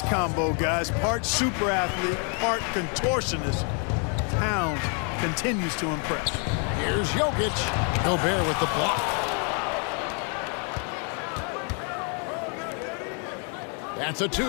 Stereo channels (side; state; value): right; quieter; 39.4 dB